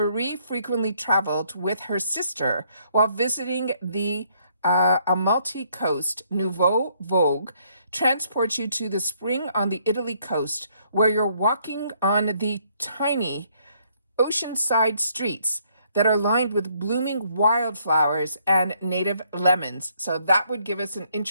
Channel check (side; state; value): both; inverted; correlation -0.68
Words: frequently traveled with her sister while visiting the Amalfi Coast. Nouveau Vogue transports you to the spring on the Italy coast, where you're walking on the tiny oceanside streets that are lined with blooming wildflowers and native lemons. So that would give us an